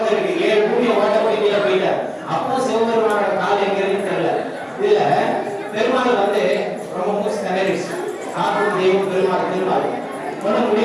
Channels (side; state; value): both; identical; correlation 1.00